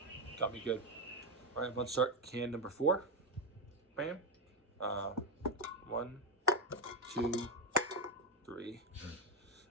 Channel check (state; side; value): normal; both; correlation 0.10